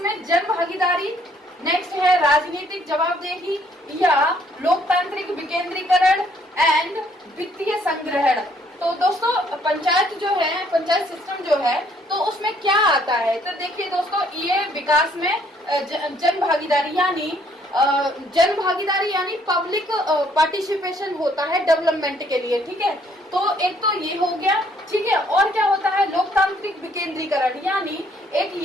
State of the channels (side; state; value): both; normal; correlation 0.65